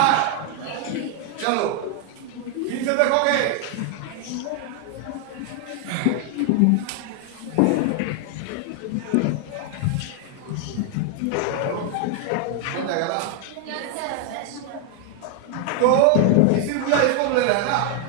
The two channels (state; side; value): different; both; correlation 0.00